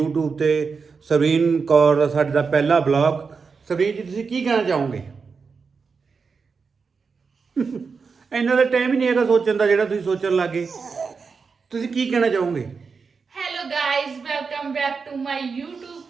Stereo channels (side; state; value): left; quieter; 5.2 dB